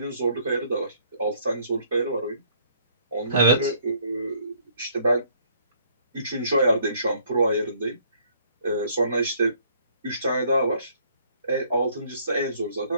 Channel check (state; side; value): inverted; both; correlation -0.63